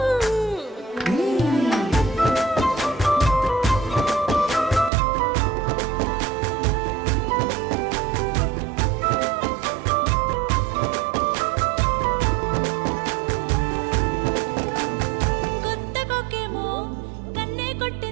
కొత్త కొక్కేమో కన్నే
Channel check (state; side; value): drops out; left; at 4.9 s